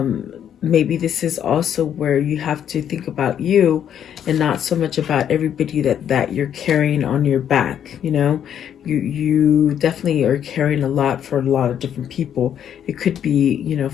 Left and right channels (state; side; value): quieter; right; 9.4 dB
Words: maybe this is also where you have to think about you and not so much about everybody that you're carrying on your back. You know, you definitely are carrying a lot for a lot of different people. It could be, you know,